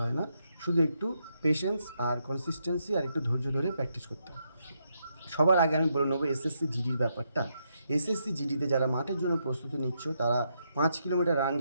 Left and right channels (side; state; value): both; inverted; correlation -0.79